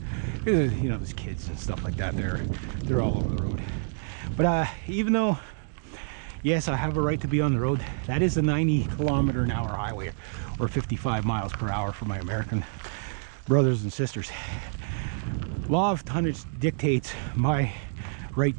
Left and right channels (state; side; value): silent; left; digital silence